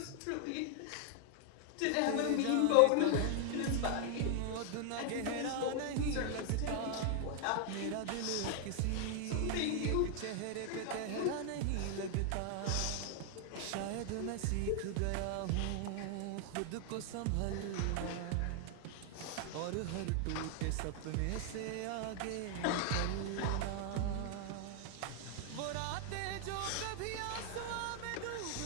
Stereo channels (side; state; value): both; different; correlation 0.00